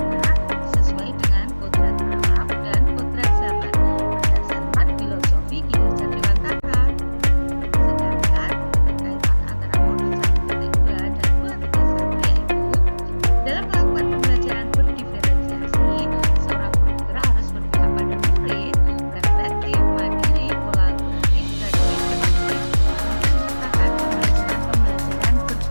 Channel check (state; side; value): inverted; both; correlation -1.00